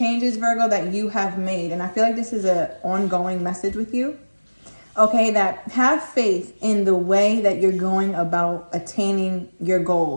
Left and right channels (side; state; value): both; inverted; correlation -1.00